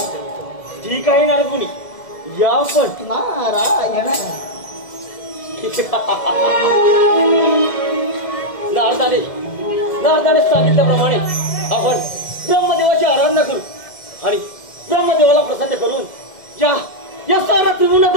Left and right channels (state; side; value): late; right; 2.1 ms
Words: ठीक आहे नारदमुनी, या पण. नारायण. नारदाने सांगितल्याप्रमाणे आपण ब्रह्मदेवाची आराधना करू आणि ब्रह्मदेवाला प्रसन्न करून या सारा